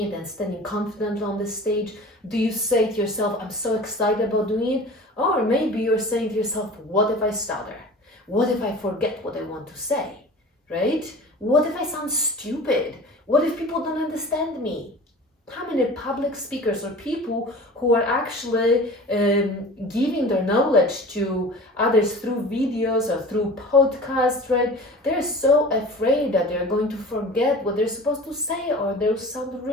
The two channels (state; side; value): normal; both; correlation 0.39